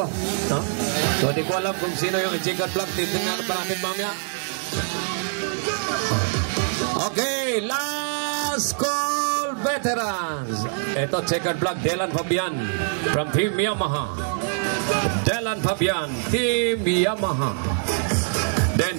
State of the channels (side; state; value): left; silent; digital silence